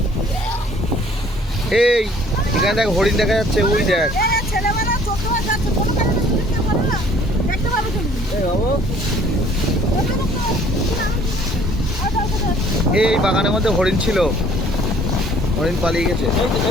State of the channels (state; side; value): normal; both; correlation 0.57